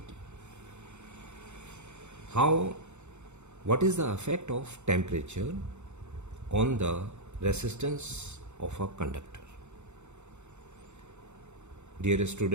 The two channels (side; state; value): left; late; 0.83 ms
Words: What is the effect of temperature on the resistance of a conductor? Dear